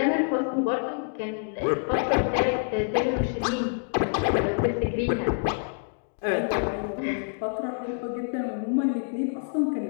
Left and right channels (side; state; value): right; silent; digital silence